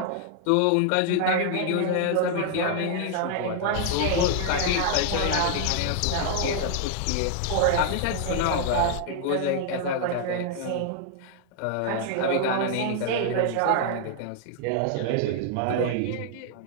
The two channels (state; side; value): different; both; correlation 0.00